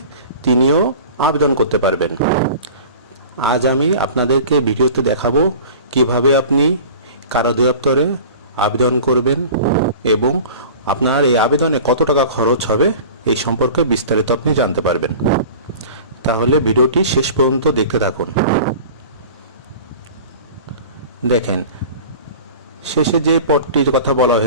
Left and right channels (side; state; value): both; inverted; correlation -0.40